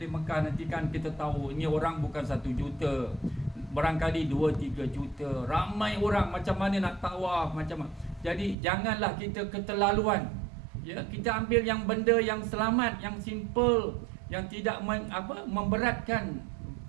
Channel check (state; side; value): drops out; left; at 8.6 s